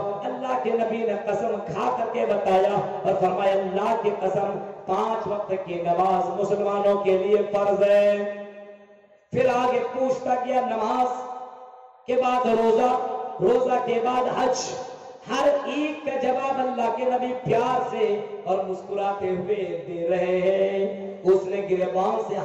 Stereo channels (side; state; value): both; identical; correlation 1.00